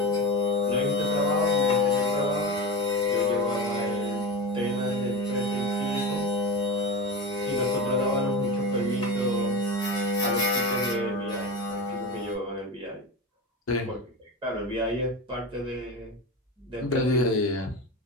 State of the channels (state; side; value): normal; both; correlation 0.24